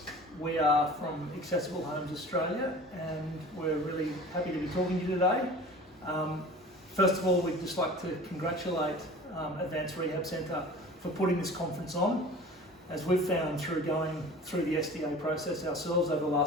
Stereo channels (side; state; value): both; normal; correlation 0.41